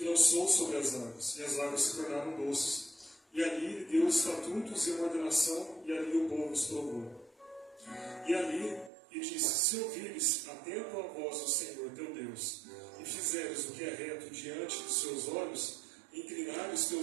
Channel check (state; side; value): drops out; left; at 8.9 s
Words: lançou sobre as águas, e as águas se tornaram doces. E ali lhe deu estatutos e uma ordenação, e ali o povo os provou. E ali e disse: se ouvires atento à voz do Senhor teu Deus, e fizeres o que é reto diante dos seus olhos, e inclinares os